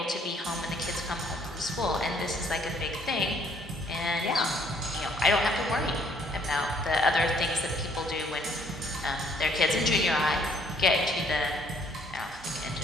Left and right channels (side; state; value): both; normal; correlation 0.64